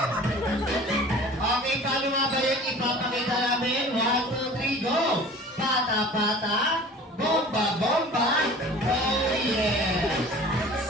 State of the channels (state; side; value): normal; both; correlation 0.43